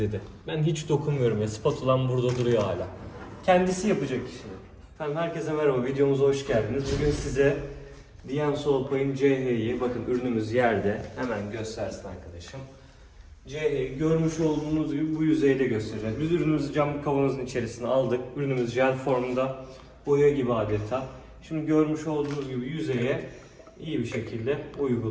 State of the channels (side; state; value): both; identical; correlation 1.00